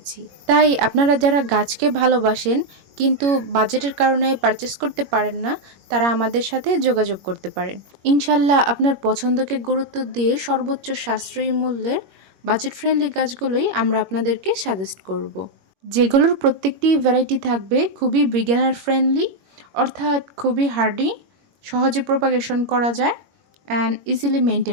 তাই আপনারা যারা গাছকে ভালোবাসেন কিন্তু বাজেটের কারণে পারচেস করতে পারেন না, তারা আমাদের সাথে যোগাযোগ করতে পারেন। ইনশাল্লাহ আপনার পছন্দকে গুরুত্ব দিয়ে সর্বোচ্চ সাশ্রয়ী মূল্যের বাজেট ফ্রেন্ডলি গাছগুলোই আমরা আপনাদেরকে সাজেস্ট করব, যেগুলোর প্রত্যেকটি ভ্যারাইটি থাকবে খুবই বিগিনার ফ্রেন্ডলি, অর্থাৎ খুবই হার্ডি, সহজে প্রপাগেশন করা যায় অ্যান্ড ইজিলি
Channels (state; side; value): late; left; 21 ms